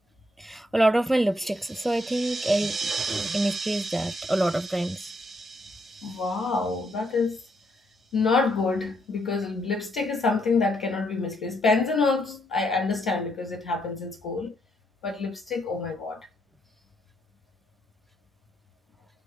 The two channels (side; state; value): both; normal; correlation 0.75